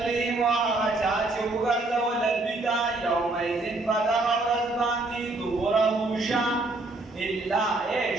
هغه چا چې وګرځول دوی ته یومئذ په دغه ورځ باندې دبره شا، الا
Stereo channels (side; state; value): left; quieter; 3.0 dB